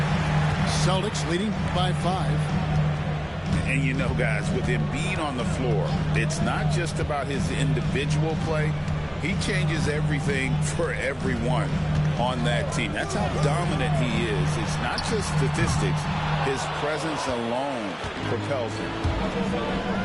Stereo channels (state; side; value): identical; both; correlation 1.00